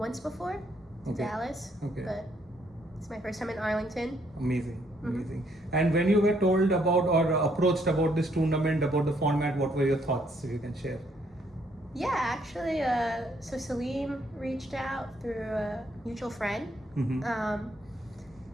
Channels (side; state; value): both; normal; correlation 0.70